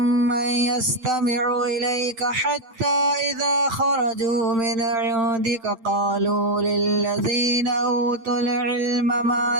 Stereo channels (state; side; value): late; left; 8.8 ms